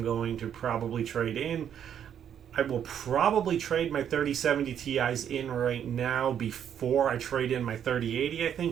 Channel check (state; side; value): quieter; left; 9.1 dB